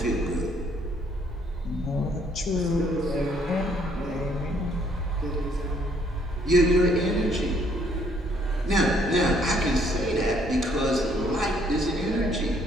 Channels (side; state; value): both; normal; correlation 0.65